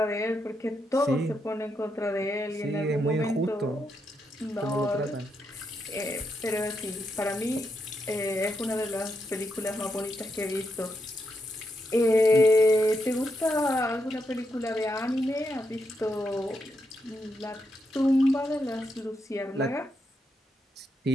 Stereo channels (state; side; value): normal; both; correlation 0.82